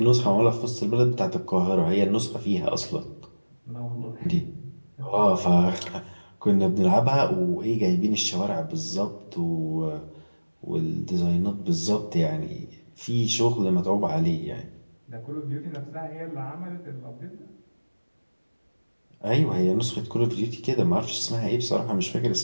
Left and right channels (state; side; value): inverted; both; correlation -1.00